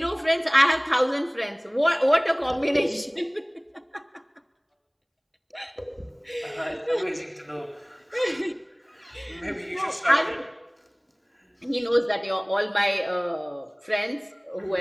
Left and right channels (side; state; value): both; identical; correlation 1.00